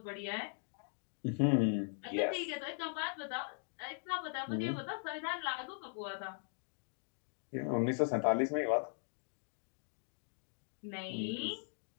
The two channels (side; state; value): right; silent; digital silence